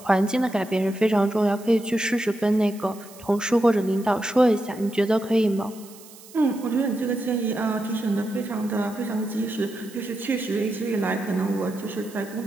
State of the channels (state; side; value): noise; right; hiss, 21 dB below the sound